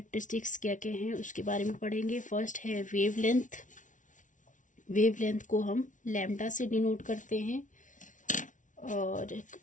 क्या क्या हैं उसके बारे में पढ़ेंगे। फर्स्ट है वेव लेंथ। वेव लेंथ को हम लैम्डा से डिनोट करते हैं। और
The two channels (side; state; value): right; late; 0.37 ms